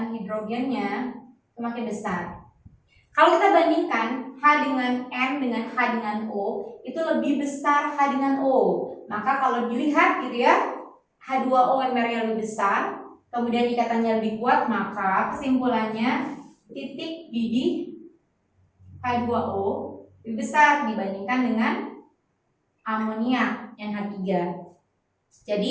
hidrogennya semakin besar. Kalau kita bandingkan H dengan N dengan H dengan O, itu lebih besar H dengan O. Maka kalau dilihat gitu ya, H2O Mr-nya lebih besar, kemudian ikatannya lebih kuat, maka kesimpulannya titik didih H2O lebih besar dibandingkan dengan amoniak NH3.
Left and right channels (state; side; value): identical; both; correlation 1.00